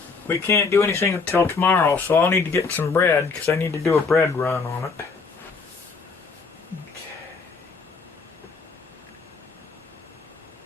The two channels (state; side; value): quieter; right; 4.7 dB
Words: we can't do anything until tomorrow, so I'll need to get some bread because I need to do a bread run on it.